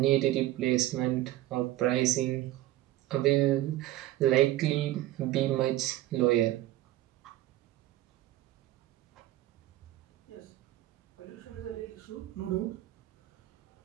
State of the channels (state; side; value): quieter; left; 15.1 dB